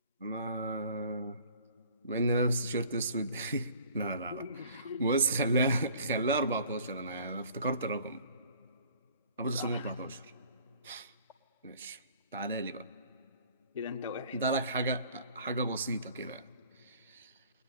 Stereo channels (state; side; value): inverted; both; correlation -0.52